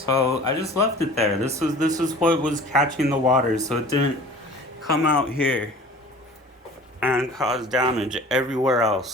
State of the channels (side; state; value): both; normal; correlation 0.44